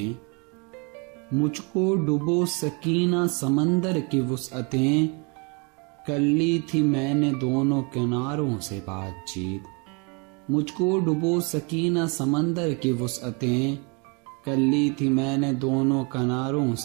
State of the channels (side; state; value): left; quieter; 32.3 dB